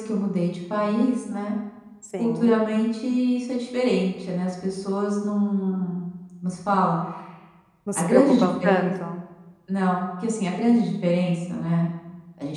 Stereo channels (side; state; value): both; identical; correlation 1.00